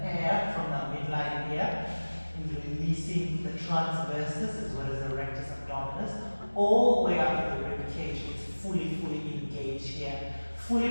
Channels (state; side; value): inverted; both; correlation -1.00